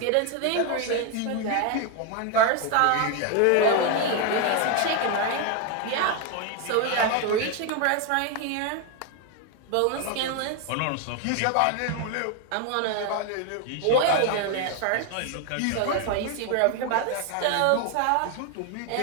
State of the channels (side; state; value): both; different; correlation 0.01